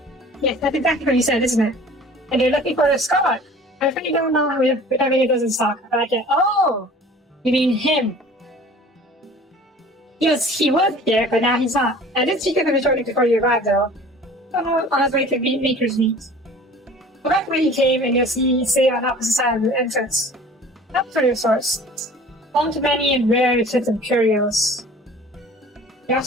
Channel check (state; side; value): normal; both; correlation 0.46